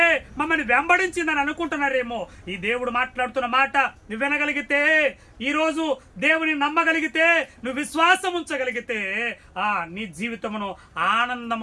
మమ్మల్ని వెంబడించిందని అనుకుంటున్నారేమో. ఈ దేవుడు మాట్లాడుతున్న మాట నువ్వు వినగలిగితే, ఈ రోజు దేవుని నమ్మగలిగితే, నువ్వు విశ్వాసం ఉంచగలిగితే నీ జీవితమును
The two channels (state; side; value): identical; both; correlation 1.00